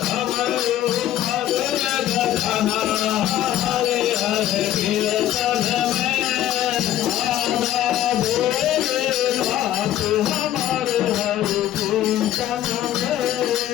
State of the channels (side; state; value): right; quieter; 12.5 dB